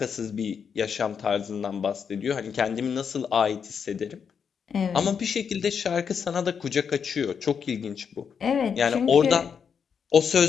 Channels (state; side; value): quieter; right; 6.8 dB